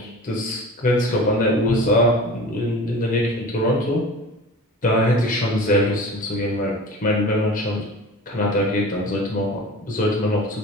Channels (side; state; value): both; normal; correlation 0.38